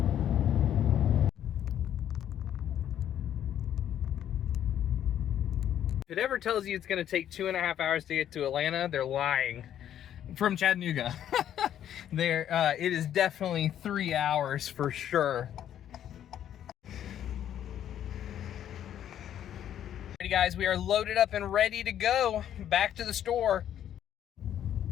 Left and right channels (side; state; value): right; quieter; 10.5 dB